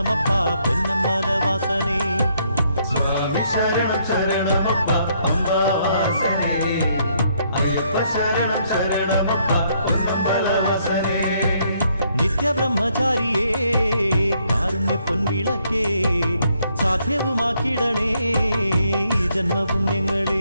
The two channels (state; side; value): inverted; both; correlation -0.71